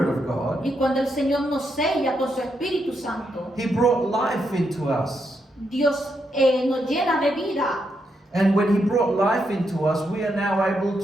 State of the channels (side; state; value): both; normal; correlation 0.81